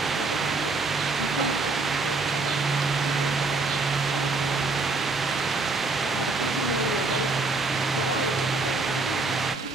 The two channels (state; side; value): quieter; left; 3.6 dB